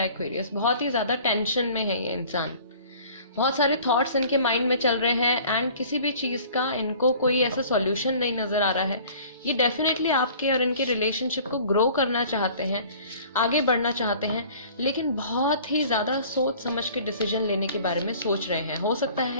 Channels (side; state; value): both; inverted; correlation -0.48